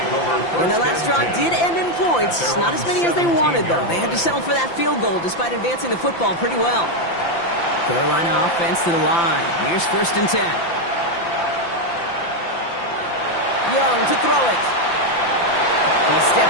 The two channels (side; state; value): right; late; 5.8 ms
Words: And the last drive did end in points. Not as many as they wanted, though. They had to settle for that field goal despite advancing the football pretty well. Carolina offense to the line. Here's 1st and 10. Young to throw it. He's